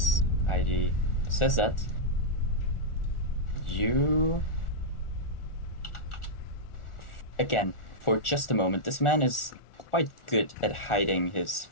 ID says that, you. Again, for just a moment, this man is quite good at hiding his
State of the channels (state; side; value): late; right; 1.4 ms